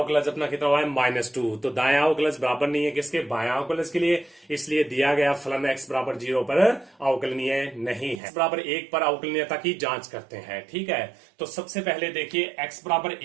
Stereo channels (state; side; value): drops out; left; at 8.2 s